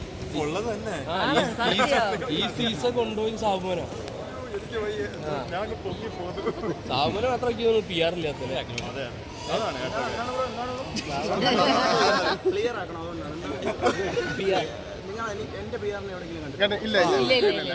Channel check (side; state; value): both; identical; correlation 1.00